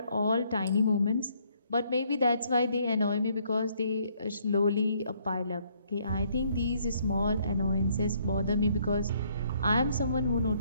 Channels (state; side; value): inverted; both; correlation -0.67